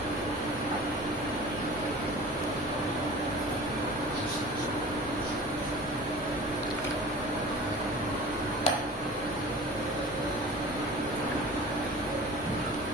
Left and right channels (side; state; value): both; normal; correlation 0.40